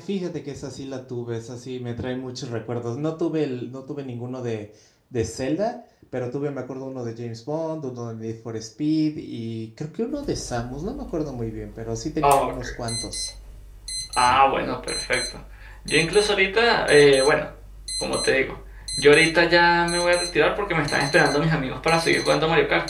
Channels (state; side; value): identical; both; correlation 1.00